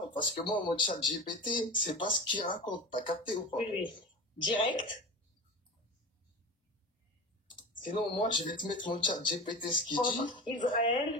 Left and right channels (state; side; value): normal; both; correlation 0.31